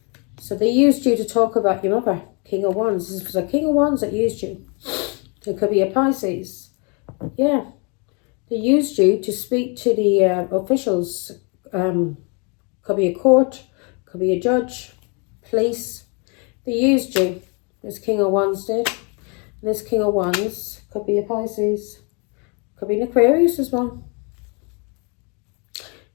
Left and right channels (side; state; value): right; quieter; 34.2 dB